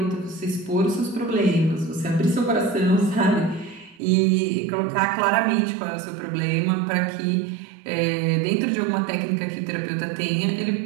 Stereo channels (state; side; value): drops out; left; at 4.0 s